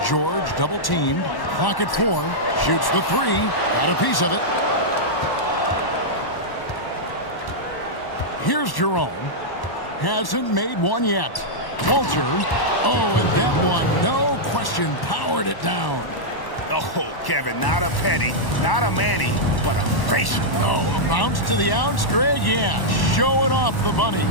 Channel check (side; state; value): right; late; 1.1 ms